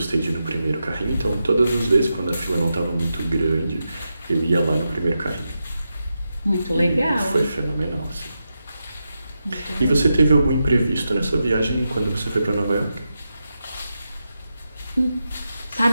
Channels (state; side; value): inverted; both; correlation -0.88